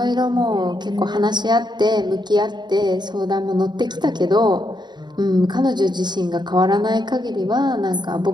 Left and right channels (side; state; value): left; late; 0.21 ms